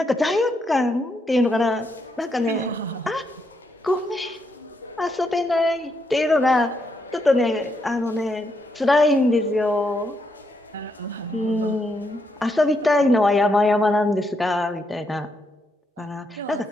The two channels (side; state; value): both; normal; correlation 0.79